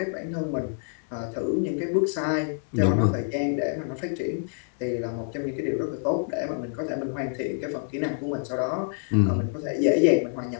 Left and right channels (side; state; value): right; silent; 60 dB below the other